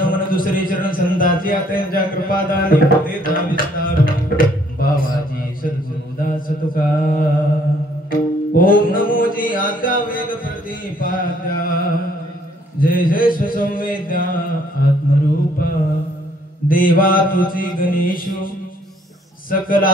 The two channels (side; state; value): both; normal; correlation 0.64